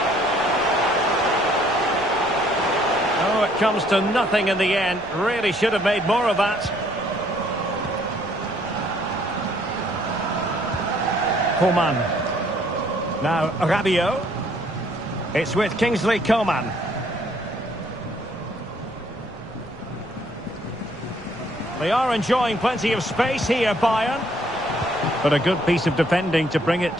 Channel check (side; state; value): left; noise; rumble, 22 dB below the sound